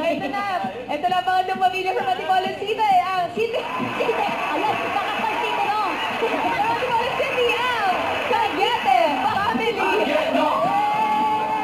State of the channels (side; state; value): both; identical; correlation 1.00